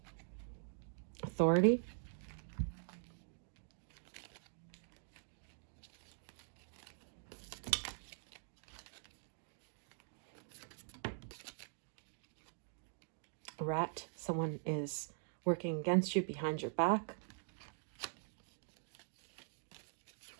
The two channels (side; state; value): left; silent; digital silence